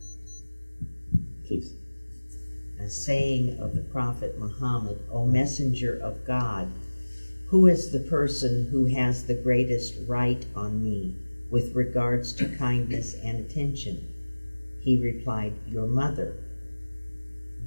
Please. A saying of the Prophet Muhammad, O Messenger of God, Who is the person who has the greatest right on me with regards to kindness and attention? He replied, Your mother.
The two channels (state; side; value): inverted; both; correlation -1.00